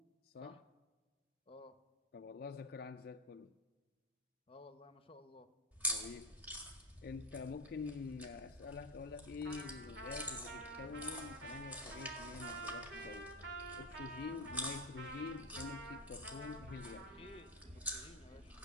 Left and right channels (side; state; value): both; normal; correlation 0.11